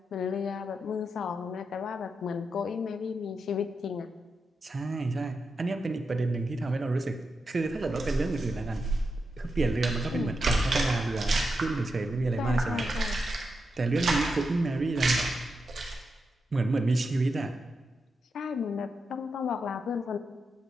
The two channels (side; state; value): both; normal; correlation 0.86